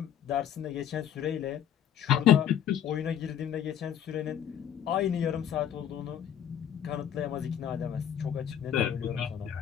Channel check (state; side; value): quieter; right; 9.7 dB